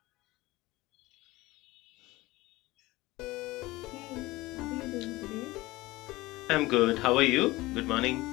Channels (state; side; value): quieter; right; 19.7 dB